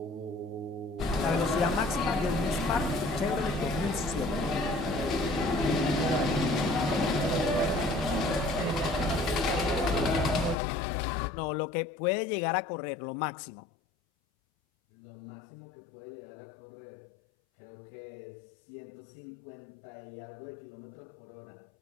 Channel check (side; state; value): right; drops out; at 10.6 s